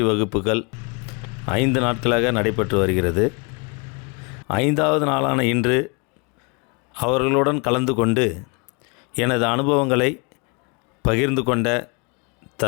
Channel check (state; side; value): quieter; right; 32.5 dB